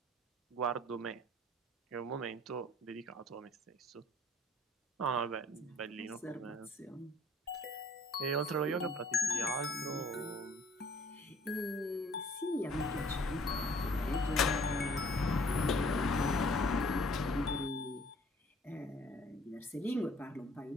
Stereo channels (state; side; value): normal; both; correlation 0.55